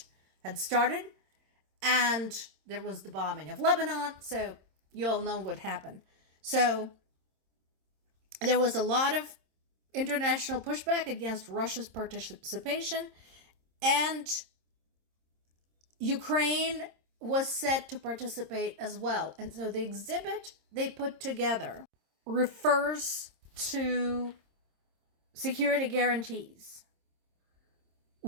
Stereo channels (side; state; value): left; late; 26 ms